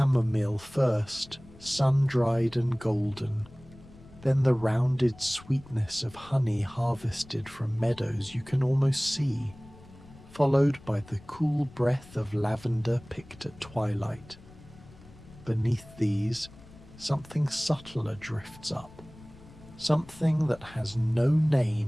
first, sun-dried and golden, then the rounded sweetness of honey harvested from meadows you can almost see, followed by the cool breath of lavender picked at twilight. Beneath these, something subtler drifts up, something that has no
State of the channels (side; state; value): left; noise; rumble, 21 dB below the sound